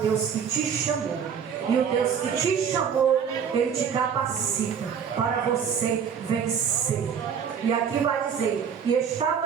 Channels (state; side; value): quieter; left; 7.3 dB